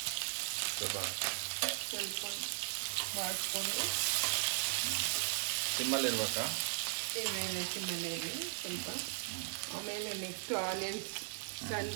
ಸ್ವಲ್ಪ ಬಾಡಿಸ್ಕೊಂಡು ಸಿಮ್ಮಲ್ಲಿರ್ಬೇಕಾ? ಸಿಮ್ಮಲ್ಲಿ ಸ್ವಲ್ಪ. ಆಮೇಲೆ ನೆಕ್ಸ್ಟ್ ಆನಿಯನ್ಸ್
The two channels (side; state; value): left; silent; digital silence